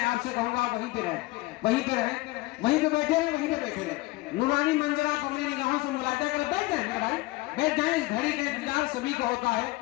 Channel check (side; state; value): right; quieter; 21.1 dB